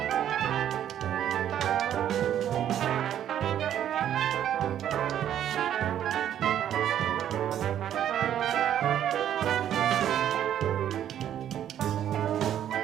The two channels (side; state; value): left; quieter; 10.6 dB